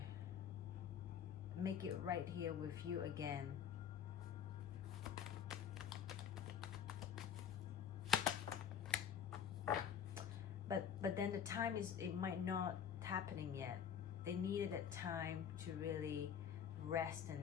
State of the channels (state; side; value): quieter; right; 8.4 dB